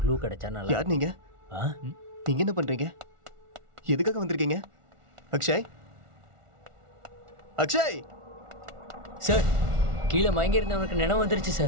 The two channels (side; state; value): left; late; 1.4 ms